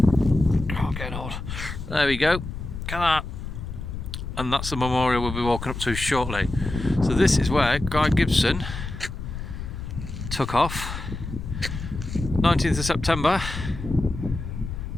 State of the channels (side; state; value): left; noise; rumble, 7 dB below the sound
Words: Oh, getting old. There we go. Look at that. And that's the memorial we'll be walking up to shortly. So this is where Guy Gibson took off. 19th of September